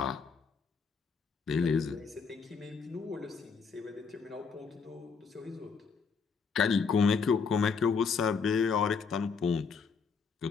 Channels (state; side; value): quieter; right; 5.5 dB